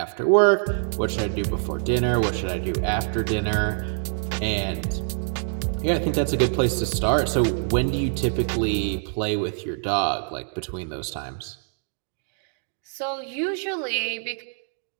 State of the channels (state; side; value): silent; left; digital silence